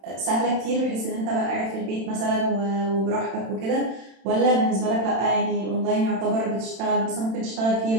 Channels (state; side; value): late; left; 31 ms